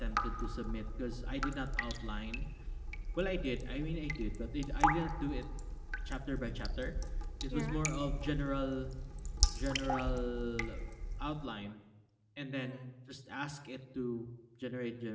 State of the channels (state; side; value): identical; both; correlation 1.00